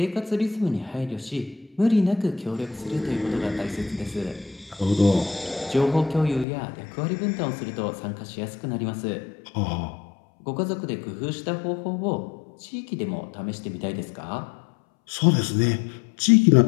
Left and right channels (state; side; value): drops out; right; at 6.5 s